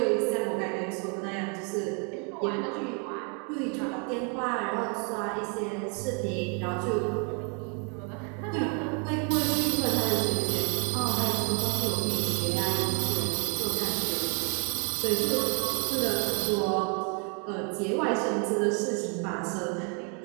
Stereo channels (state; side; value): quieter; left; 37.6 dB